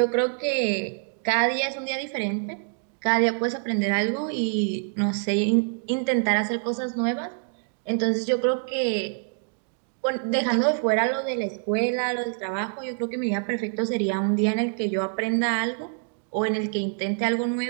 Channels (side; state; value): left; silent; 61 dB below the other